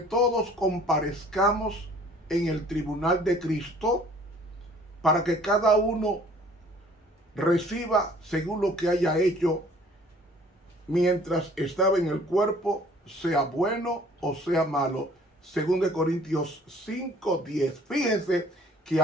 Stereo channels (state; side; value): normal; both; correlation 0.54